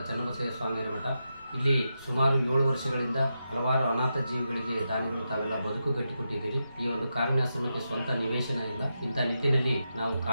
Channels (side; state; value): both; inverted; correlation -0.87